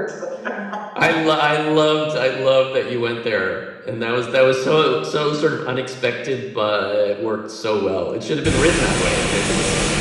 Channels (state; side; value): identical; both; correlation 1.00